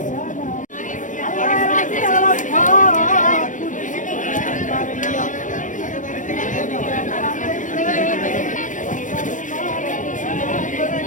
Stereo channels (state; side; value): late; right; 0.37 ms